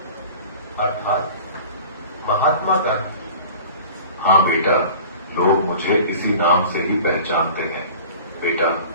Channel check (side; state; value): both; inverted; correlation -0.42